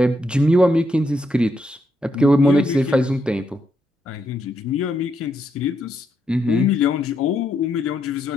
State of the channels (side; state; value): both; normal; correlation 0.79